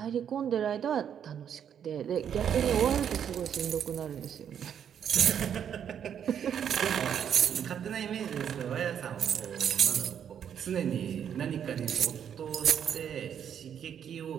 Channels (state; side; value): quieter; left; 8.6 dB